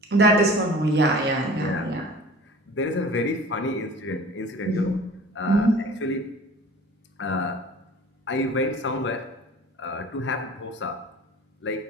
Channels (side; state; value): both; normal; correlation 0.43